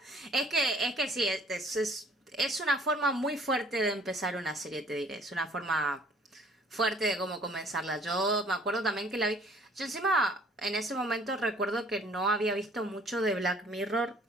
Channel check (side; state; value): both; normal; correlation 0.56